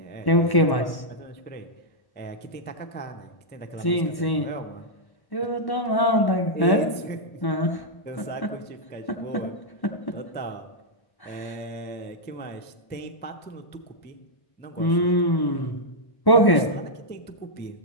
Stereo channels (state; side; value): late; right; 1.1 ms